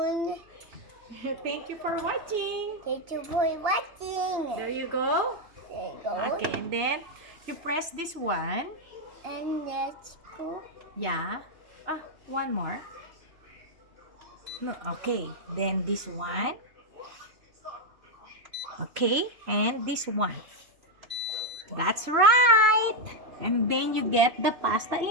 Thank you for watching. Thank you for watching. There you go. There you go. Okay, and then you press this one. And let's cook. Yeah. One more. No, okay. Then this one. Okay, and this one. That's right. And then you get the pasta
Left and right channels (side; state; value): left; late; 2.9 ms